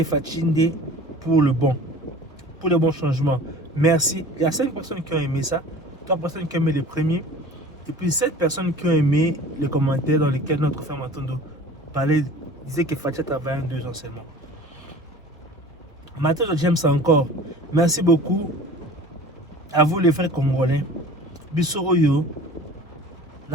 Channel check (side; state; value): both; normal; correlation 0.42